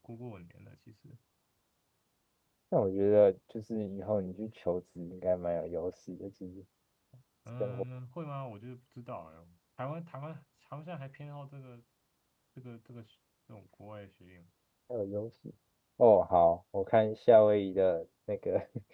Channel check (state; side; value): identical; both; correlation 1.00